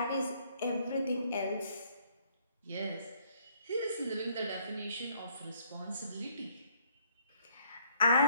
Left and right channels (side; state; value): both; inverted; correlation -0.65